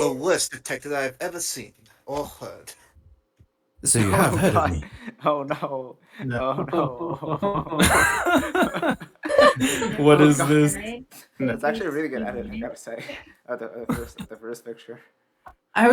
worst detective I've ever seen or heard. So you have heard of me. Oh no. No. Oh no. What Oh, is God. this? That's actually a really good edit, I gotta say. The first picture. I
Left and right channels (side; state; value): both; identical; correlation 1.00